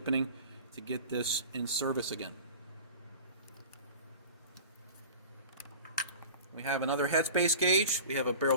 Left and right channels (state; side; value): inverted; both; correlation -0.38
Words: to get this in service again. We have another headspace gauge, we have a barrel